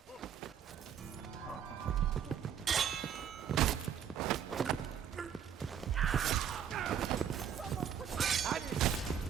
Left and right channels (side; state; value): left; quieter; 8.6 dB